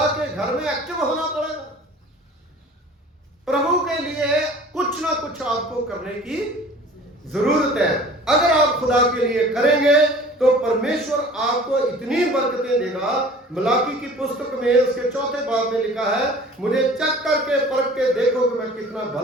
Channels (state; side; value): normal; both; correlation 0.46